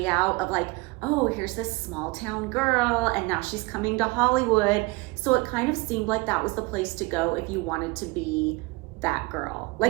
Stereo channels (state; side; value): quieter; left; 24.7 dB